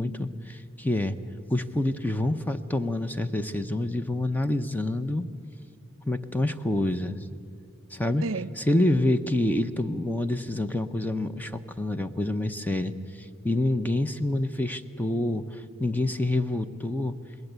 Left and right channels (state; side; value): normal; both; correlation 0.87